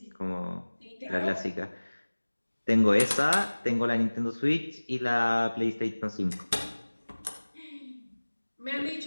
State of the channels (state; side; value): inverted; both; correlation -1.00